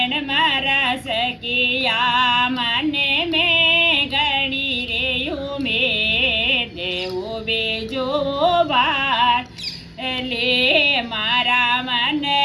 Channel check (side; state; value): both; identical; correlation 1.00